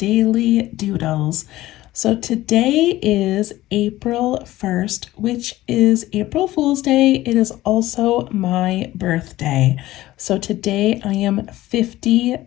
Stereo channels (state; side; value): quieter; right; 16.3 dB